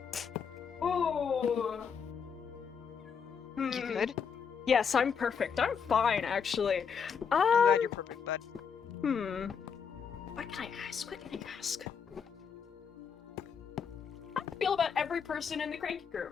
Ooh. You good? Yes, I'm perfect. I'm fine, actually. I'm glad you're perfect, bud. What can I ask? What can I ask? How do you feel about every person in the Cranky Crew?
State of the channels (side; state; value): right; quieter; 6.6 dB